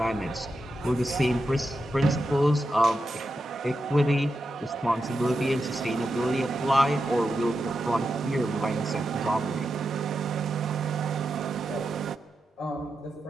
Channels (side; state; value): both; normal; correlation 0.88